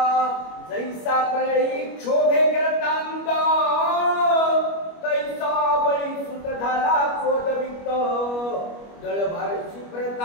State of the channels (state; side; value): late; right; 25 ms